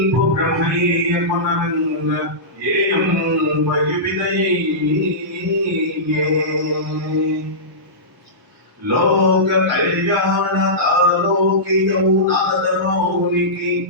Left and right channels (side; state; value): both; normal; correlation -0.17